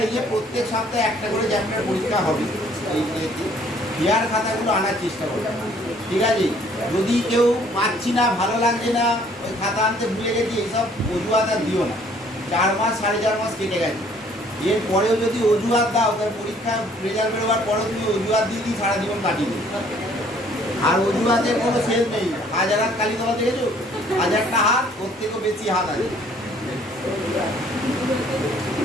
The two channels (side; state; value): both; normal; correlation 0.60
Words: এই যে প্রত্যেক সপ্তাহে একটা করে চ্যাপ্টার পরীক্ষা হবে, এই ইয়ার খাতাগুলো আনার চেষ্টা করবে, ঠিক আছে। যদি কেউ পাচ্ছি না, ভালো লাগছে না, ওই খাতা আনতে ভুলে গেছি, এইসব অজুহাত আর দিও না। 4 মাস 4.5 মাস কেটে গেছে, এরপরেও যদি অজুহাত দাও, তার পরীক্ষা রেজাল্ট বেরোবার পরেও তুমি অজুহাত দিয়ে সারা জীবন কাটিয়ে দেবে। আর অজুহাতের কোনো শেষ নেই। 1000 হাত কালীতলা দেখেছো, 1000টা হাত, ওর থেকেও বেশি হাত আছে।